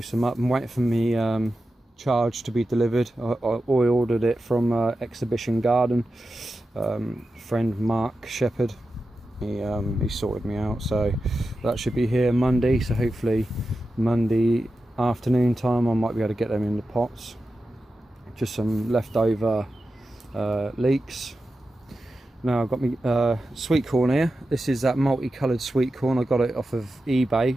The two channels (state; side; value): normal; both; correlation 0.92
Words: them up. I'm waiting for me charge to be delivered. I ordered it from Exhibition Garden. Friend Mark Shepherd, he sorted me out, so that should be here Monday. So hopefully Monday afternoon time I might be able to get them in the pots. Just some leftover leeks. Now I've got me sweet corn here. This is that multicoloured sweet corn. I got it off of